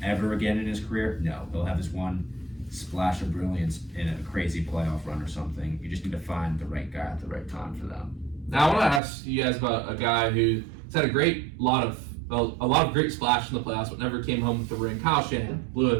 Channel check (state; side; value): drops out; left; at 9.0 s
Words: ever again in his career? No. He'll have this one splash of brilliance in a crazy playoff run or something. You just need to find the right guy at the right time for them. Now I want to ask you guys about a guy who's had a lot of great splash in the playoffs, but never came home with the ring. Kyle Shanahan blew